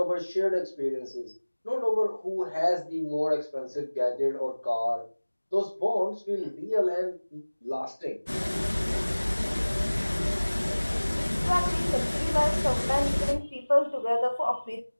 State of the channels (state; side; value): inverted; both; correlation -1.00